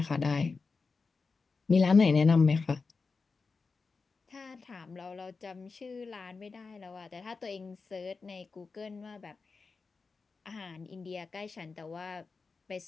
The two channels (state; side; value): quieter; right; 4.5 dB